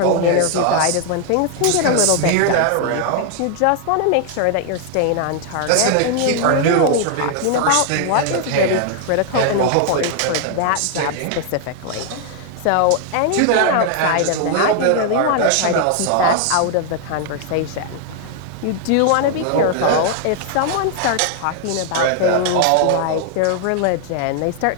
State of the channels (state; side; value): different; both; correlation 0.00